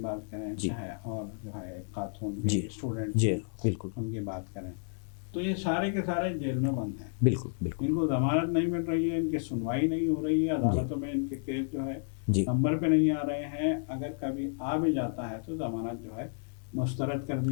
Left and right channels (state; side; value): silent; right; digital silence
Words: کریں، جی، چاہے اور جو ہے ایک خاتون بھی جی، اسٹوڈنٹ جی، تھے، بالکل، ان کی بات کریں، تو یہ سارے کے سارے جیل میں بند ہیں۔ بالکل، بالکل، ان کو ضمانت نہیں مل رہی ہے، ان کی سنوائی نہیں ہو رہی ہے، عدالتوں میں ان کے کیس جو ہے جی، نمبر پہ نہیں آ رہے ہیں، اگر کبھی آ بھی جاتا ہے تو ضمانت جو ہے مسترد کر